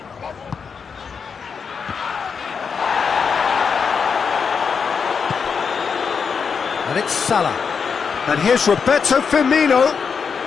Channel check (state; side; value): quieter; right; 6.0 dB